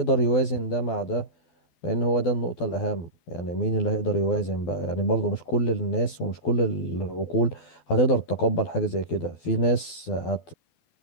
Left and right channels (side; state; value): right; late; 12 ms